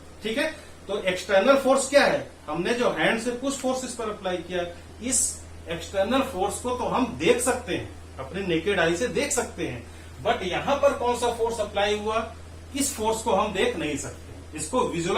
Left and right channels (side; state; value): both; identical; correlation 1.00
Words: ठीक है, तो एक्सटर्नल फोर्स क्या है, हमने जो हैंड से पुश फोर्स इस पर अप्लाई किया, इस एक्सटर्नल फोर्स को तो हम देख सकते हैं, अपने नेकेड आई से देख सकते हैं, बट यहां पर कौन सा फोर्स अप्लाई हुआ, इस फोर्स को हम देख नहीं सकते, इसको